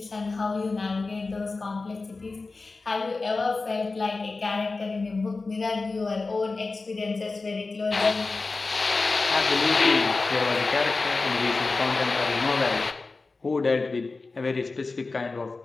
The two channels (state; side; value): quieter; right; 3.8 dB